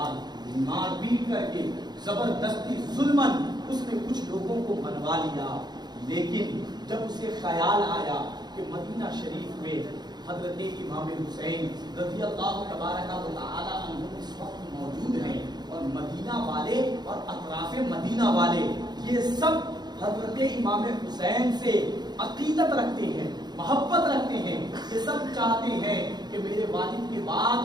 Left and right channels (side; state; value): left; late; 0.20 ms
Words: مار پیٹ کر کے زبردستی ظلمن اس نے کچھ لوگوں کو منوا لیا، لیکن جب اسے خیال آیا کہ مدینہ شریف میں حضرت امام حسین رضی اللہ تبارک و تعالی عنہ اس وقت موجود ہیں، اور مدینہ والے اور اطراف مدینہ والے یہ سب حضرت امام حسین سے عقیدت رکھتے ہیں، محبت رکھتے ہیں، یہ سب چاہتے ہیں کہ میرے والد کے